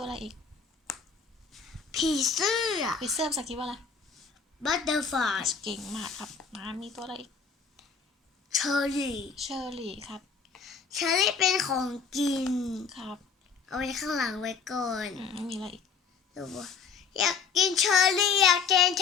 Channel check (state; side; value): quieter; right; 5.7 dB